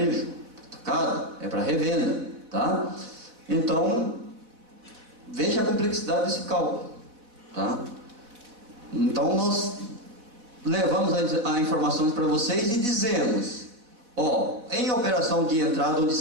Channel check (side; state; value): left; late; 4.1 ms